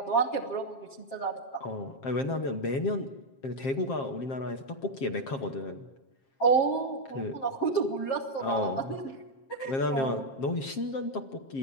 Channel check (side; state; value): right; late; 7.5 ms